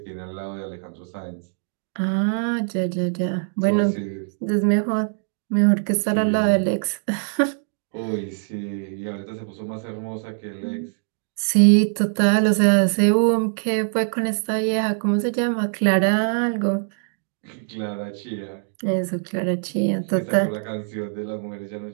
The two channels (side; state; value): left; silent; digital silence